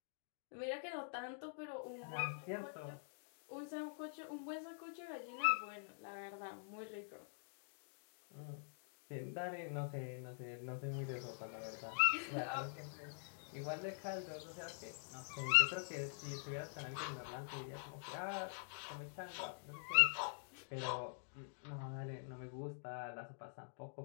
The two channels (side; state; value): right; silent; digital silence